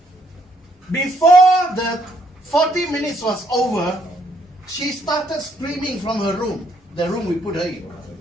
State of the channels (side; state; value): both; normal; correlation 0.71